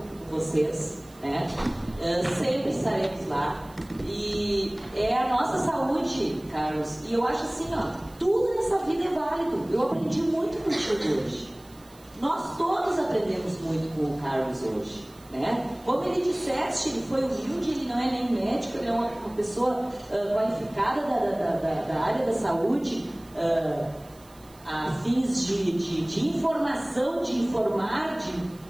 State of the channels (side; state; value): right; noise; hiss, 26 dB below the sound